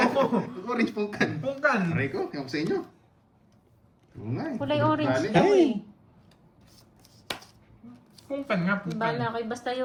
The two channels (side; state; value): both; identical; correlation 1.00